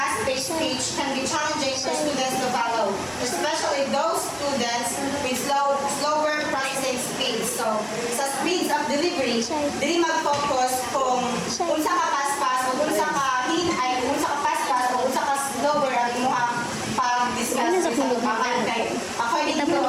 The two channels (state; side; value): identical; both; correlation 1.00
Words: speech can be challenging for students to follow, especially those students with slower processing speed. So sa speeds of delivery, dili mag-focus kung unsa ka paspas o unsa ka hinay, unsa ka paspas o unsa ka slower ang imuhang pag-discuss sa tubangan. Kay according to